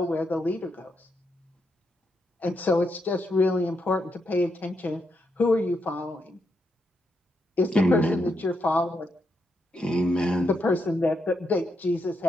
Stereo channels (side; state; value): both; normal; correlation 0.81